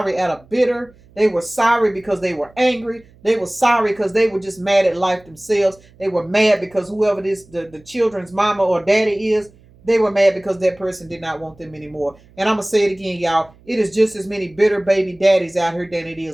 out of bitter. They were sorry because they were angry. They were sorry because they were just mad at life themselves. They were mad because whoever this the children's mama or daddy is, they were mad because that person did not want them anymore. And I'm going to say it again, y'all. It is just as many bitter baby daddies out here than it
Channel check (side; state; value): right; noise; hum, 28 dB below the sound